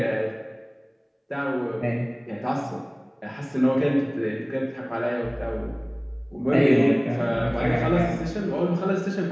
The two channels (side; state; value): both; identical; correlation 1.00